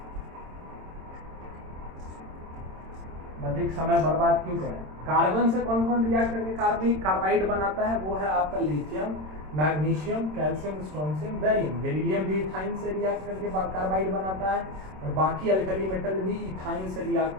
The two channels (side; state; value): left; late; 26 ms